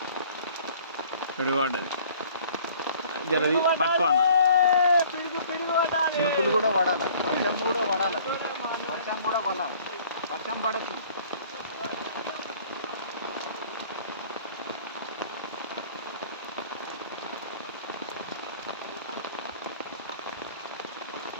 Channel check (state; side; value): inverted; both; correlation -0.53